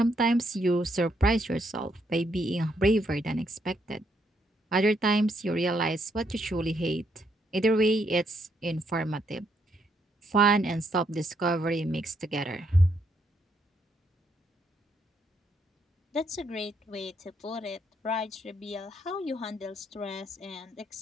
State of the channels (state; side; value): normal; both; correlation 0.75